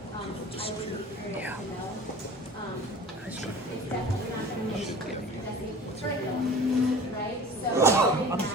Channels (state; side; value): normal; both; correlation 0.40